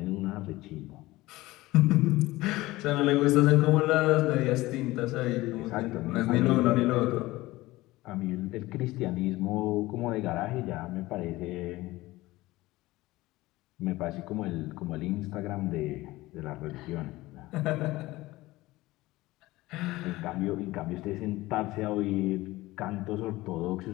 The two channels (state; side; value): quieter; right; 18.8 dB